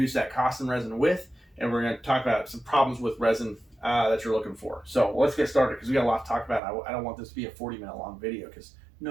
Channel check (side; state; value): left; drops out; at 6.6 s